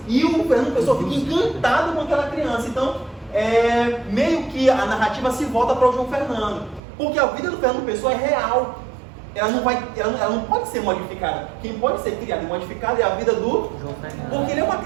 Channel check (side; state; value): left; drops out; at 6.8 s